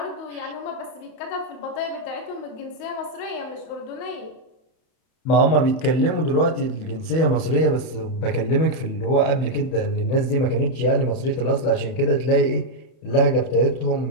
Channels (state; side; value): late; right; 31 ms